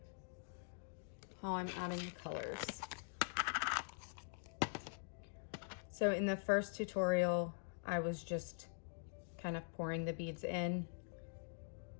how I'm adding the colors. So in the first tutorial, I was just kind of pouring the beads in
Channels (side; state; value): right; silent; digital silence